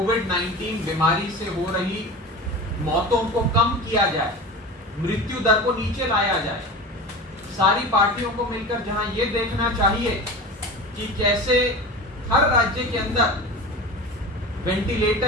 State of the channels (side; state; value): both; normal; correlation 0.31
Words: बीमारी से हो रही मौतों को कम किया जाए, मृत्यु दर को नीचे लाया जाए। सारी पार्टियों को मिलकर जहां ये देखना चाहिए कि कैसे हर राज्य के अंदर